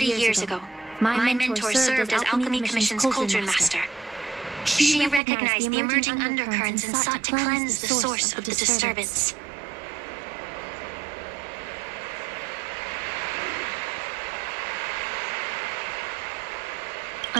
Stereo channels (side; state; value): left; drops out; at 5.2 s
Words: years ago, my mentor served as Alchemy Commission's Cauldron Master. She recognized the emerging undercurrents and sought to cleanse the source of the disturbance.